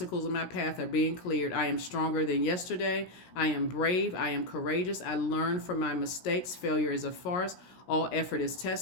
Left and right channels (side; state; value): right; late; 17 ms